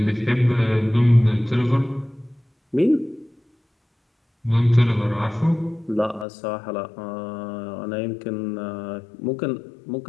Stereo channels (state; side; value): drops out; right; at 6.2 s